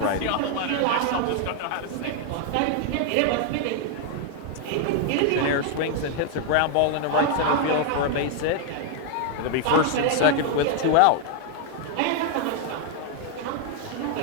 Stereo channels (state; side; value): different; both; correlation 0.00